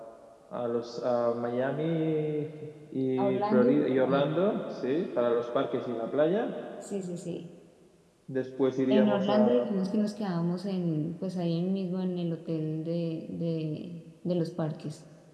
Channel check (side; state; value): both; identical; correlation 1.00